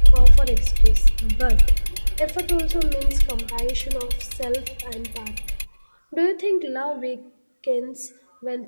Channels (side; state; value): both; inverted; correlation -1.00